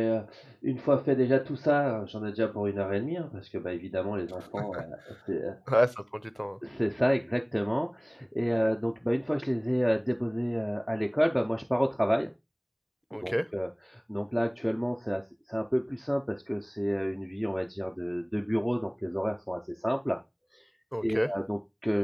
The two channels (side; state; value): both; identical; correlation 1.00